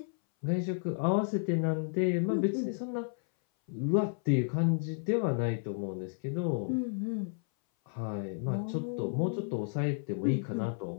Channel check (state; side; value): silent; right; 56 dB below the other